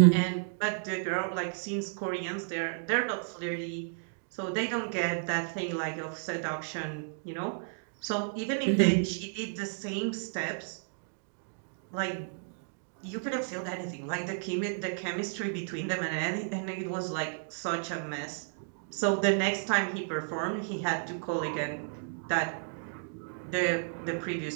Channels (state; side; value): silent; left; digital silence